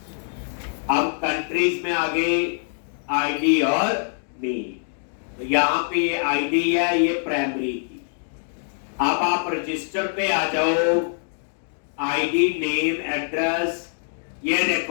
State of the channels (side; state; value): right; silent; digital silence